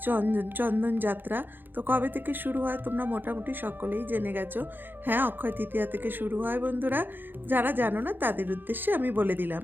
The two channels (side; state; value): left; late; 0.094 ms